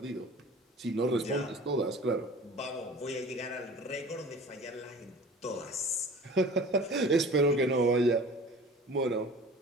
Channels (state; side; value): normal; both; correlation 0.42